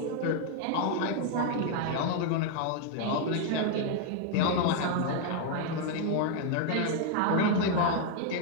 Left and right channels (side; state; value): both; different; correlation 0.00